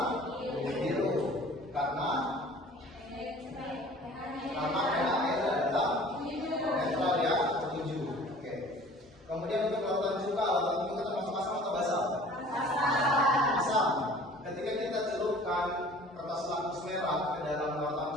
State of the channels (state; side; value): normal; both; correlation 0.48